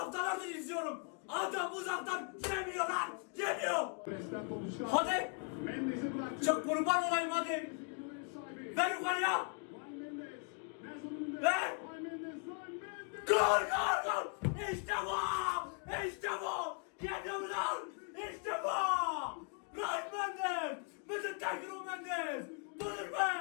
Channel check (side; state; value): right; quieter; 36.5 dB